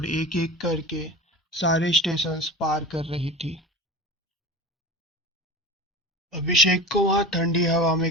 एक एक करके सारे स्टेशंस पार कर रही थी। अभिषेक को वहां ठंडी हवा में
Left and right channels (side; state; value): both; normal; correlation 0.31